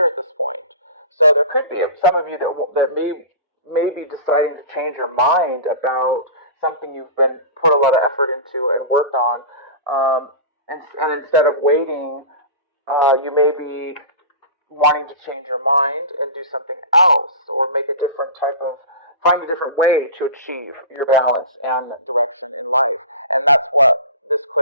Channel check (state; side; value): inverted; both; correlation -0.33